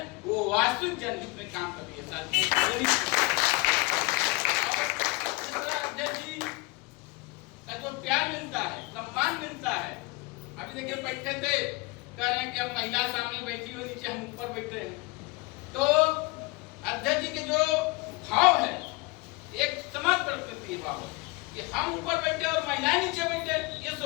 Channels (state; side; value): quieter; right; 23.9 dB